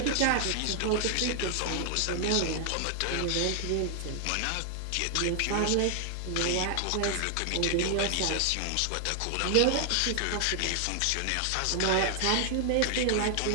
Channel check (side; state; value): both; different; correlation 0.00